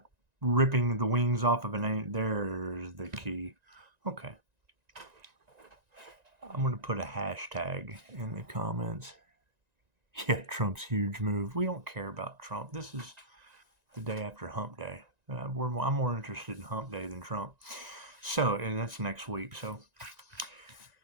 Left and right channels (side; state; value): left; late; 1.9 ms